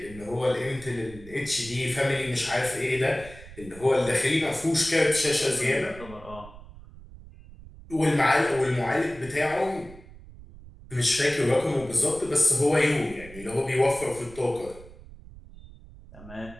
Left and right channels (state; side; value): noise; right; rumble, 18 dB below the sound